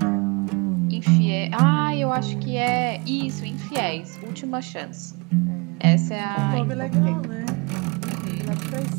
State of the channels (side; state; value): left; quieter; 29.9 dB